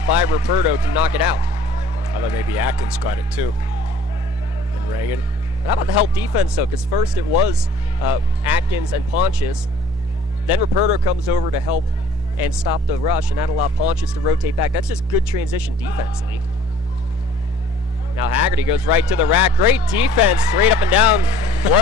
by Ruperto to knock it out. I thought maybe Atkins got it too. And Reagan. How about the help defense, though? Because first it was Atkins and Pontius. Then Ruperto comes over to help and stop the rush, and that allowed Pontius to rotate back. That's just good transition defensively. Now Haggerty goes right to the rack. Great defense, straight up and down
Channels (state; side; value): normal; both; correlation 0.52